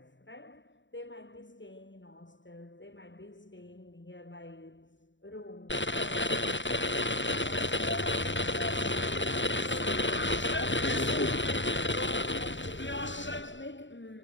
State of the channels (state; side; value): late; right; 0.54 ms